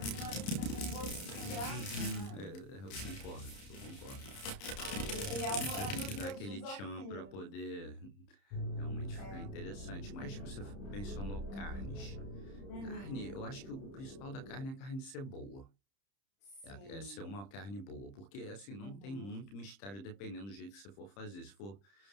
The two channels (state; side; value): late; right; 30 ms